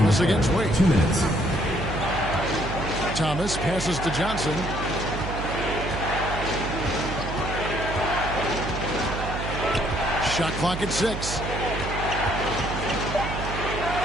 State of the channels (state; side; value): noise; right; hum, 6 dB below the sound